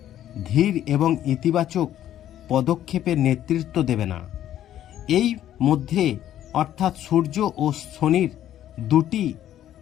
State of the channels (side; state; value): right; quieter; 11.7 dB